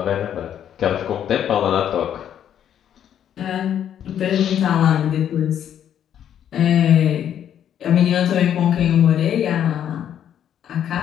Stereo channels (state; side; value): quieter; right; 9.8 dB